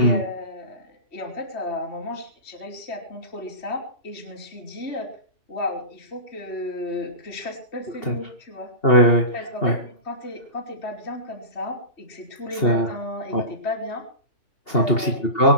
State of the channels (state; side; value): late; right; 2.8 ms